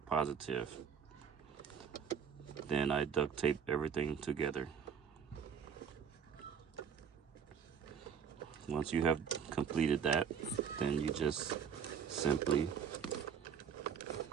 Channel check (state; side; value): quieter; left; 7.4 dB